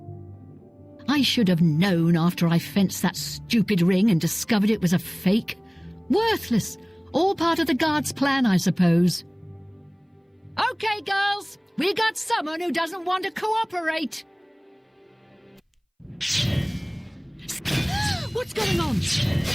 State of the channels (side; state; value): both; identical; correlation 1.00